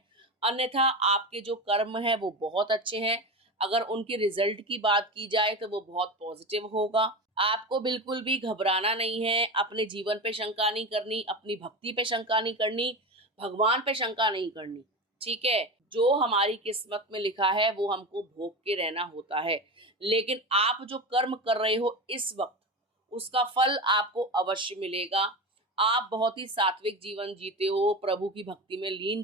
अन्यथा आपके जो कर्म है वो बहुत अच्छे हैं। अगर उनके रिजल्ट की बात की जाए तो वो बहुत पॉजिटिव होगा। आपको बिल्कुल भी घबराना नहीं है, अपने जीवन पे शंका नहीं करनी, अपनी भक्ति पे शंका नहीं करनी, भगवान पे शंका नहीं करनी। ठीक है। जो हमारी किस्मत में लिखा है वो हमको भोग के रहना होता है। लेकिन आप जो कर्म कर रहे हो इस वक्त, उसका फल आपको अवश्य मिलेगा। आप बहुत ही सात्विक जीवन जीते हो, प्रभु की भक्ति में लीन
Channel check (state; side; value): normal; both; correlation 0.24